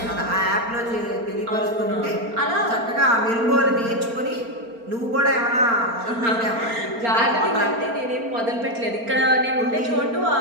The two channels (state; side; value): late; left; 4.3 ms